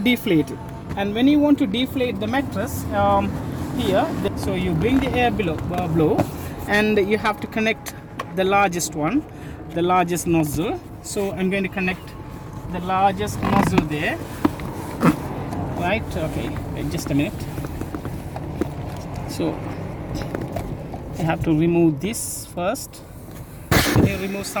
it. And when you want to deflate the mattress here, so you bring the air blow, and you have to connect the largest one, the largest nozzle. So I'm going to connect the largest nozzle there, right? Okay, wait just a minute. So I have to remove this first. When you remove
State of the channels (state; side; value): identical; both; correlation 1.00